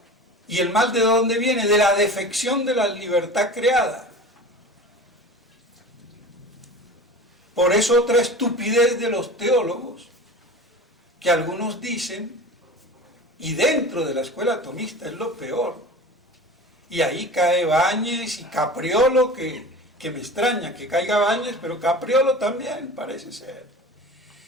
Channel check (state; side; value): normal; both; correlation 0.36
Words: ¿Y el mal de dónde viene? De la defección de la libertad creada. Por eso otra estupidez de los teólogos, que algunos dicen Y dentro de la escuela atomista es lo peor. Y ahí cae Báñez y Capriolo, que me extraña que caiga Báñez, pero Capriolo también parece ser.